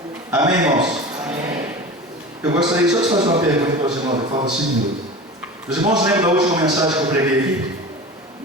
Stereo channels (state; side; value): normal; both; correlation 0.33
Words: Amém, irmãos? Amém. Eu gostaria só de fazer uma pergunta para os irmãos, falta 5 minutos. Os irmãos lembram da última mensagem que eu preguei aqui?